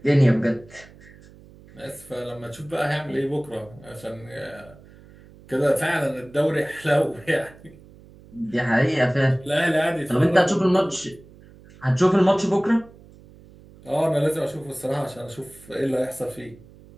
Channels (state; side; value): noise; right; hum, 23 dB below the sound